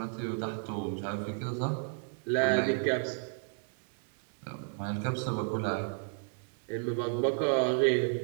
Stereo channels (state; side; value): silent; left; 56 dB below the other